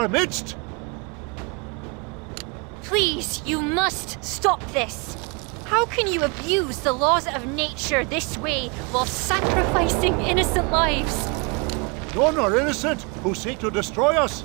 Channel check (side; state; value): left; quieter; 31.0 dB